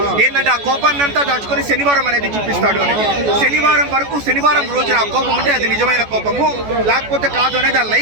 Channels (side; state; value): left; late; 14 ms